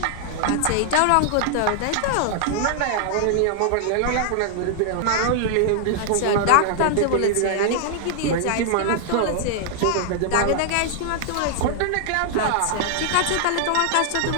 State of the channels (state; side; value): different; both; correlation 0.00